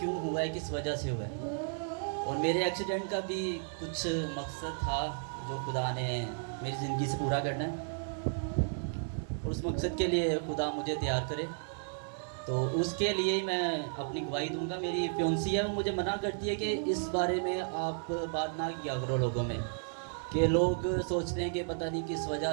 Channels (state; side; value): silent; left; 55 dB below the other